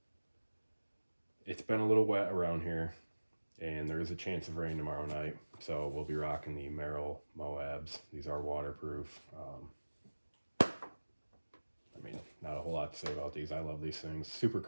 it's been a little wet around here, and there is a chance of rain tomorrow night, so we'll be rocking the Merrell Moabs. These are waterproof. I mean, not a whole lot to say about these. I love these things. Super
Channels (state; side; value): inverted; both; correlation -1.00